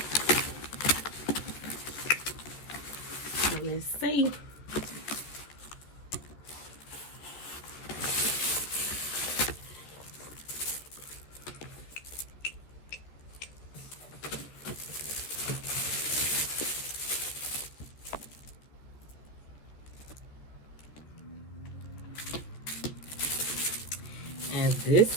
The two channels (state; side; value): late; right; 14 ms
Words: So let's see. And this